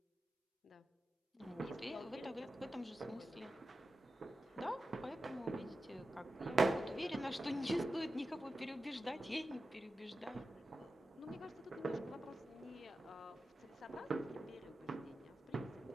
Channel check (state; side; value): normal; both; correlation 0.92